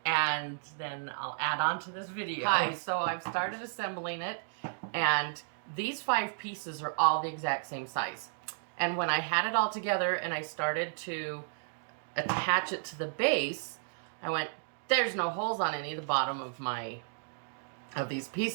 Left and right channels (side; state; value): left; silent; digital silence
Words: and then I'll add on to this video. Hi, so I've started assembling it, and these 5 pieces are all the exact same size. And when I had it all together and I started to attach it to the base, I went, there's no holes on any of the bottom of these